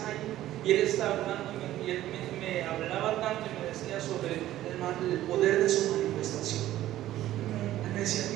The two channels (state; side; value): quieter; left; 13.9 dB